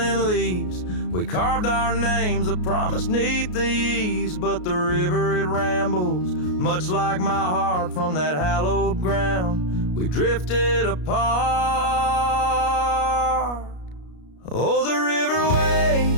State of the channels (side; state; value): right; late; 33 ms